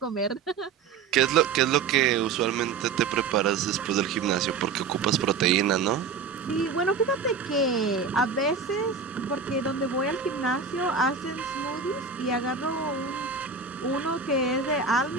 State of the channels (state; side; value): quieter; left; 5.4 dB